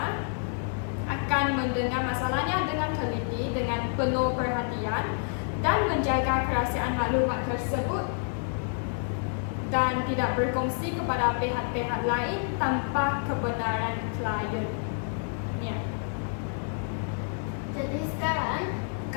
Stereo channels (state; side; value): silent; right; 59 dB below the other